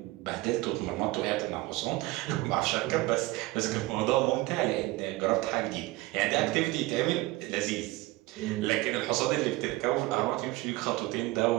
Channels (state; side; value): quieter; left; 19.7 dB